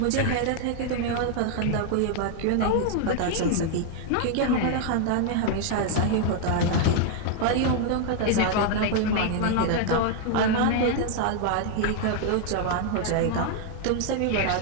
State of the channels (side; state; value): both; different; correlation 0.00